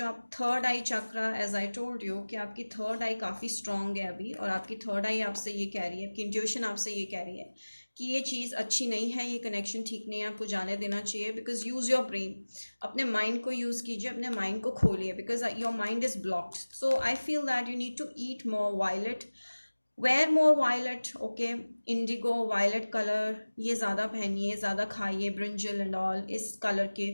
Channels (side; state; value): both; inverted; correlation -1.00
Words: आप third eye chakra, as I told you कि आपकी थर्ड आई काफ़ी स्ट्रॉन्ग है अभी, और आपकी थर्ड आई आपसे ये कह रही है, आपकी इंट्यूशन आपसे ये कह रही है कि ये चीज़ अच्छी नहीं है, ये कनेक्शन ठीक नहीं है, आपको जाने देना चाहिए। बिकॉज यूज़ योर ब्रेन, अपने माइंड को यूज़ कीजिए, अपने माइंड को खोलिए, because your mind is blocked. So I feel that you need to eat more violet, wear more violet, okay. Indigo, violet colour ये ज़्यादा पहनिए, ज़्यादा खाइए, ब्रिंजल एंड ऑल इस कलर के,